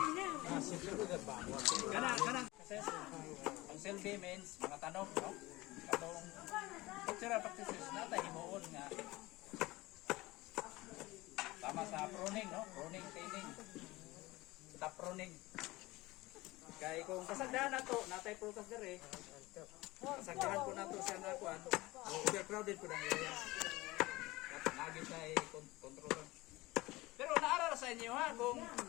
Kanang ang selfie means mga tanong, no? Katong cultural practices natin himuon nga tama sa pruning, no? Pruning, thinning. Top pruning. Kaya kung kasagdahan na to, natay prutas dire. Kasagdahan po na to siya na kuan. Overcrowded po ng area. Lagi tayo kontrol. Pero naarara sa inyo ha, kung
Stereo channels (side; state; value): right; quieter; 20.3 dB